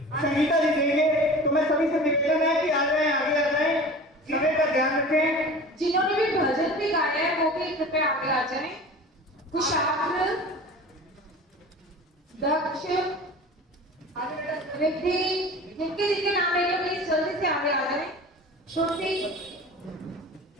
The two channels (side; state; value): both; normal; correlation 0.38